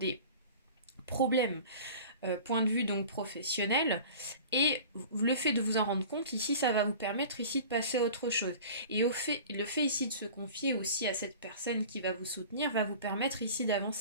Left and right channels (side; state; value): both; inverted; correlation -0.40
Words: problèmes point de vue donc professionnel, et le fait de vous en rendre compte ici, ça va vous permettre ici de passer à autre chose, et le fait ici de se confier aussi à cette personne qui va vous soutenir va vous permettre ici